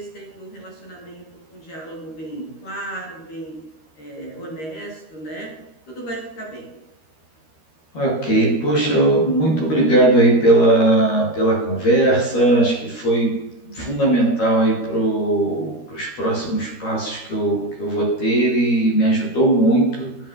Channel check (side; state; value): right; late; 13 ms